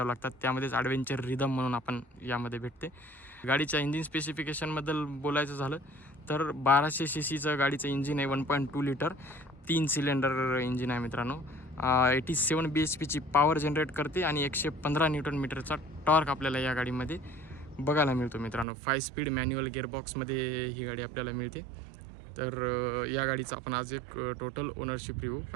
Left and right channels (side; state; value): left; drops out; at 18.7 s